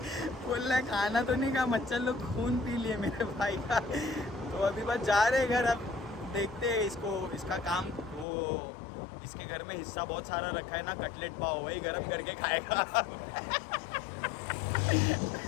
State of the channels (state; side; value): drops out; right; at 8.2 s